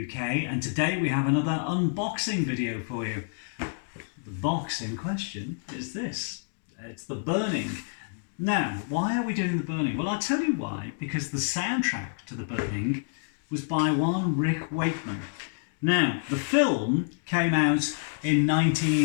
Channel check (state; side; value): silent; right; digital silence